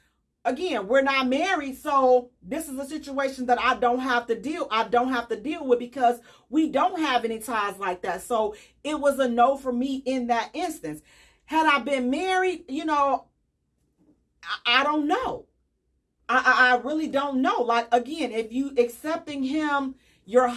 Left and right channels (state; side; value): identical; both; correlation 1.00